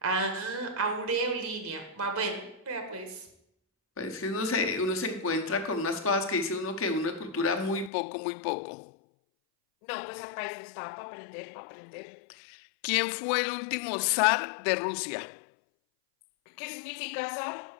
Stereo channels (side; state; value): right; drops out; at 7.9 s